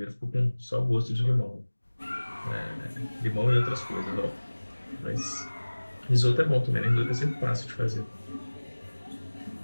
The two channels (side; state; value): both; inverted; correlation -1.00